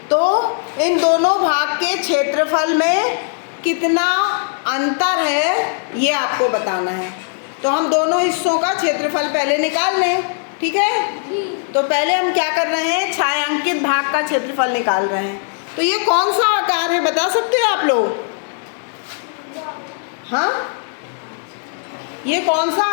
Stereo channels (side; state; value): right; silent; 58 dB below the other